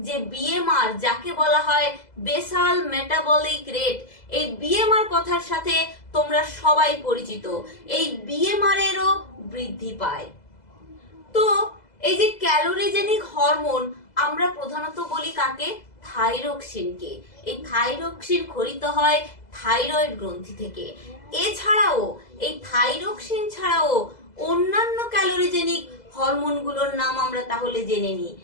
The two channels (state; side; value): late; right; 2.0 ms